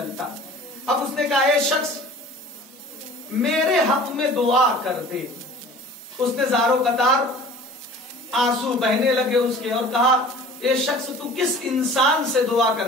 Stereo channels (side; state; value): both; normal; correlation 0.45